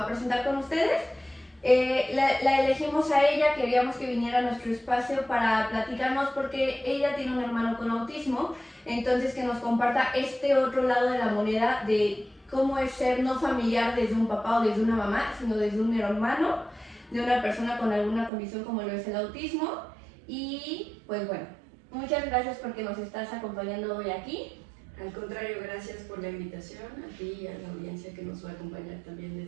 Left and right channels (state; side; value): drops out; left; at 18.3 s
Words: a presentar con ustedes. La elegimos a ella, queríamos que viniera a nuestro espacio para platicarnos porque ella tiene un hermano con autismo, entonces que nos comparta este otro lado de la moneda de cómo es ser no familiar desde un papá o desde una mamá, sino desde un hermano, de una persona con alguna condición como lo es el autismo. Y pues bueno, muchas gracias porque nos estás acompañando hoy aquí. Al contrario, gracias por la invitación a ti y a la audiencia que nos va a acompañar también